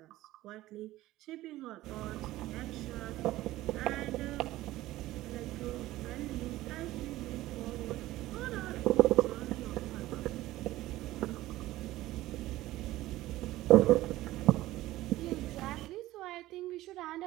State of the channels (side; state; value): left; quieter; 16.4 dB